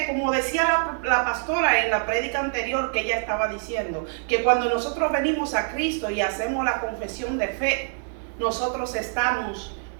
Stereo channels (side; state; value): left; silent; 62 dB below the other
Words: como decía la pastora en la prédica anterior que ella estaba diciendo, que cuando nosotros venimos a Cristo y hacemos la confesión de fe, nosotros estamos